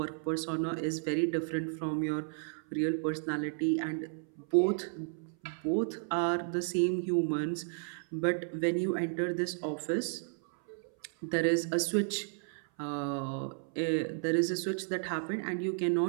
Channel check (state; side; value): silent; left; 56 dB below the other